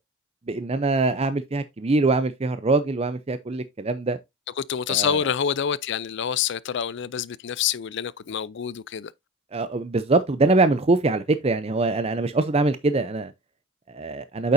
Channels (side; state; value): both; normal; correlation 0.32